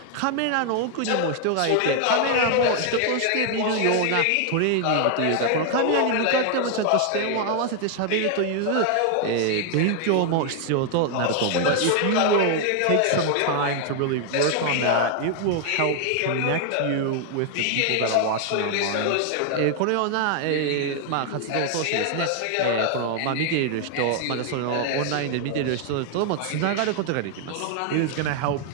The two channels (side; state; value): both; different; correlation 0.00